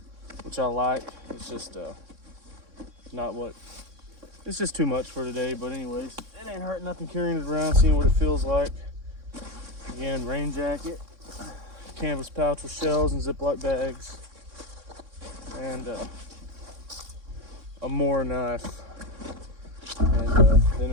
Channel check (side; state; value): left; late; 3.6 ms